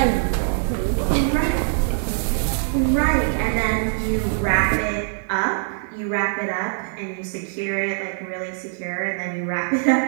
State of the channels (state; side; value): silent; left; digital silence